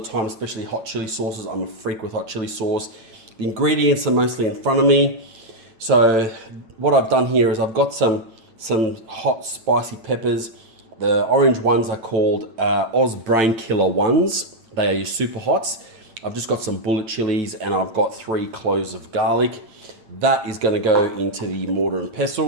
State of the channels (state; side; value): late; left; 8.9 ms